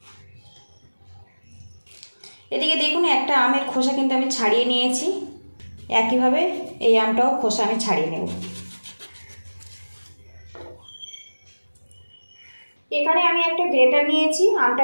এদিকে দেখুন একটা আমের খোসা কিন্তু আমি ছাড়িয়ে নিয়েছি। একইভাবে এই আমটাও খোসা আমি ছাড়িয়ে নেব। এখানে আমি একটা গ্রেটার নিয়েছি, আমটা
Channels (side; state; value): both; inverted; correlation -1.00